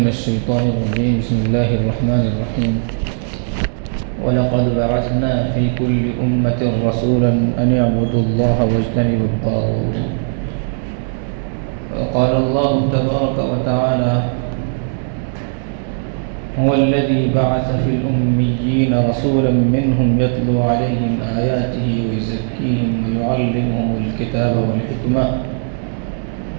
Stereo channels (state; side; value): silent; left; digital silence